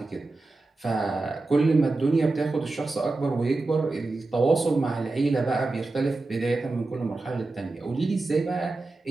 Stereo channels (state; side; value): quieter; left; 3.3 dB